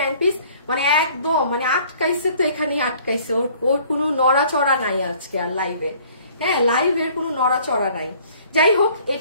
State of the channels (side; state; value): both; inverted; correlation -0.55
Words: পিস, মানে একদম মানে আটকাইছে তো, এখানেই আটকাইছে, ওর কোনো নড়াচড়া নাই আজকে আর লাইভে। হ্যাঁ লাইভের কোনো নড়াচড়া নাই। যাই হোক